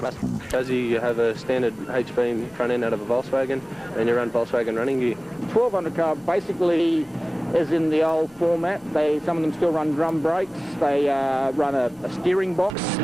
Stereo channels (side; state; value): both; normal; correlation 0.98